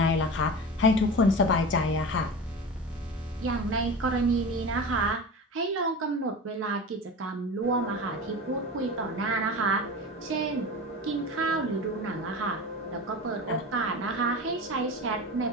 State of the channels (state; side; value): normal; both; correlation 0.30